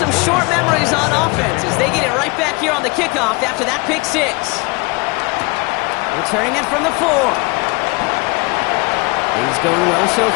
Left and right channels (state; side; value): quieter; right; 27.5 dB